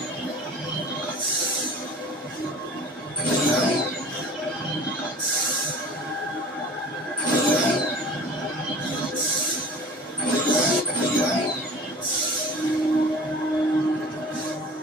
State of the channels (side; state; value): both; normal; correlation 0.42